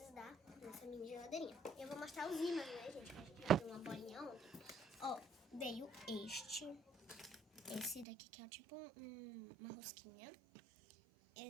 da nossa mini geladeirinha. Eu vou mostrar os ímãs, né, gente? A gente vai ter uma bolinha ontem. Ó, veio esse daqui que é tipo uma rosquinha.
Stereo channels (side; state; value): left; drops out; at 8.1 s